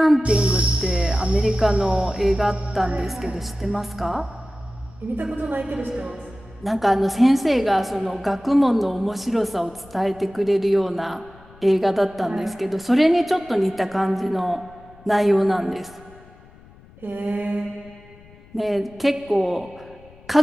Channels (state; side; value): noise; left; rumble, 24 dB below the sound